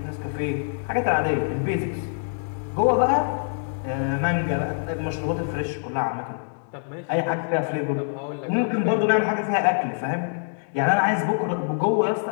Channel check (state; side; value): silent; right; digital silence